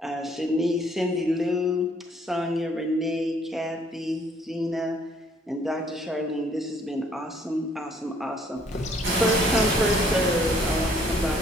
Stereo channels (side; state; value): both; normal; correlation 0.63